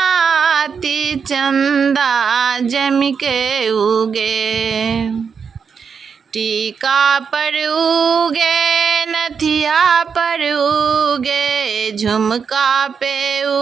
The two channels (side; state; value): left; quieter; 6.2 dB